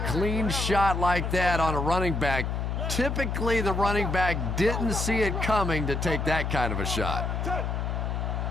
clean shot like that on a running back. Typically, the running back didn't see it coming to take that kind of a shot.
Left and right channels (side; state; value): left; noise; hum, 1 dB below the sound